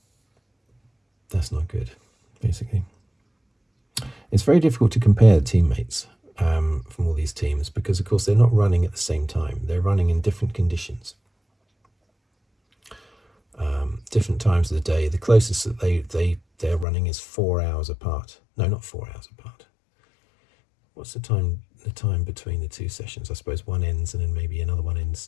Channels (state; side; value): drops out; right; at 16.9 s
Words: good, basically. It's very difficult to compare teammates from all these teams because, of course, they're not running at the same time. They're running in different conditions, different times of the day. The closest that they're running is 4 hours apart. No, not 4 hours apart. What's the time between the two sessions? I suppose one ends and then maybe another one